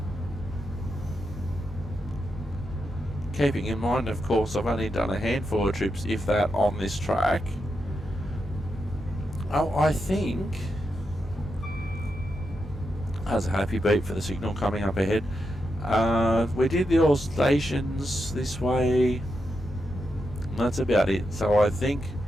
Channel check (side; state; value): both; normal; correlation 0.85